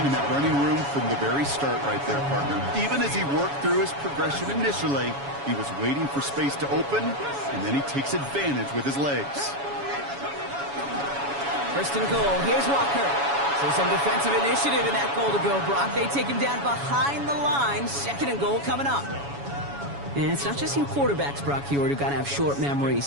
and that running room from the very start right there, partner. Even as he worked through his progression initially, he was waiting for space to open, and then he takes advantage with his legs. 1st and goal. Here's Walker. So some defensive initiative in that goal to go, Brock. They take him down behind the line. 2nd and goal coming up. And it's not just you quarterbacks, Brock Huard, who got to have short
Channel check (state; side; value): late; left; 7.1 ms